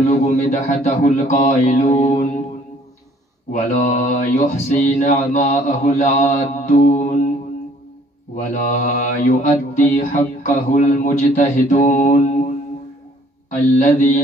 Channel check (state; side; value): normal; both; correlation 0.59